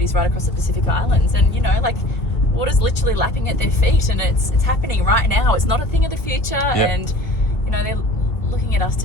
right across the Pacific Islands, and water's literally lapping at their feet, and it's happening right now. It's not a thing of the future, and they're looking at us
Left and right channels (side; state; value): right; late; 1.6 ms